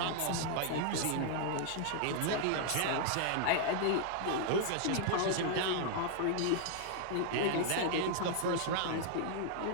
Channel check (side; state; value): both; different; correlation -0.01